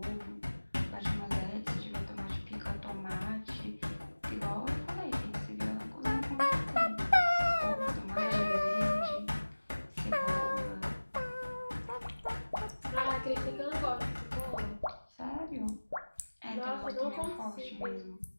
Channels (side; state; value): both; inverted; correlation -1.00